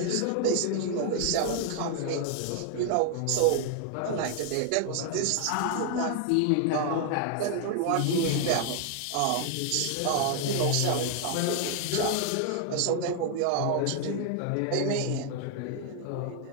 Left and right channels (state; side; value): different; both; correlation 0.00